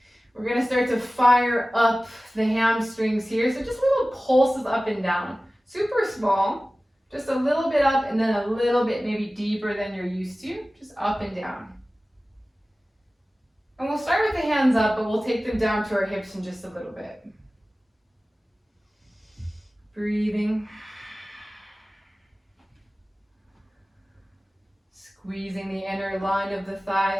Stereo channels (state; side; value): normal; both; correlation 0.97